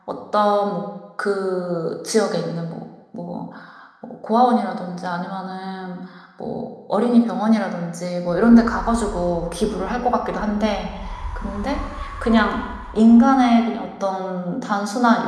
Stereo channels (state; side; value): identical; both; correlation 1.00